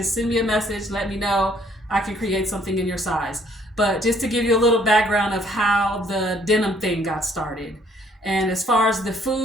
send me a message. Let me know. I can create something in your size. But just to give you a little background of how the denim thing got started. And as far as the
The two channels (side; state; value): both; normal; correlation 0.63